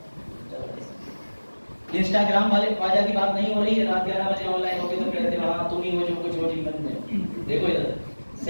इंस्टाग्राम वाले ख्वाजा की बात नहीं हो रही है। रात 11 बजे ऑनलाइन होगी तो कहते हैं हाँ तुम ही हो जो कुछ हो जीवन में। देखो इधर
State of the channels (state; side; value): inverted; both; correlation -1.00